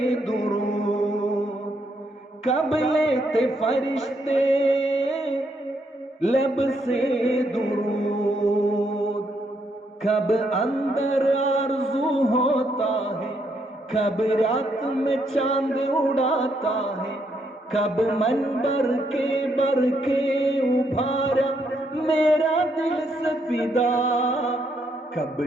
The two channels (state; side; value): normal; both; correlation 0.75